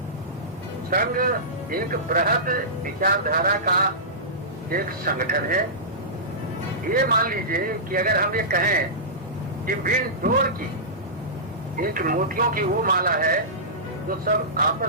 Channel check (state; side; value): normal; both; correlation -0.19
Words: संघ एक बृहद विचारधारा का एक संगठन है। ये मान लीजिए कि अगर हम ये कहें कि बिन डोर की एक मोतियों की वो माला है जो सब